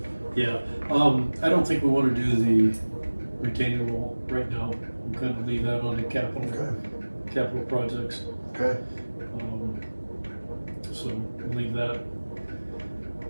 yeah, I don't think we wanna do the retaining wall right now, we'll kind of leave that on the capital projects. Okay, So we'll leave that.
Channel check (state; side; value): inverted; both; correlation -1.00